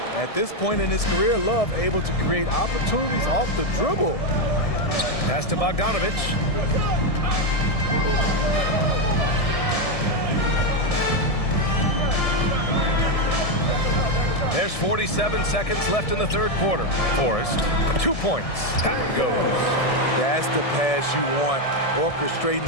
At this point in his career, Love able to create opportunities off the dribble. Pass to Bogdanovich. There's 47 seconds left in the third quarter. Forrest, 2 points. That one goes. That's the pass you want. Orchestrating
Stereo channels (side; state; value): right; late; 1.7 ms